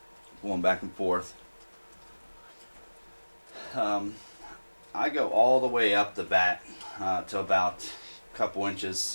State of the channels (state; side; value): inverted; both; correlation -1.00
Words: going back and forth. I go all the way up the bat to about a couple